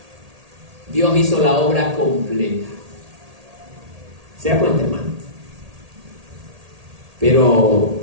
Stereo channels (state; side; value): late; left; 1.8 ms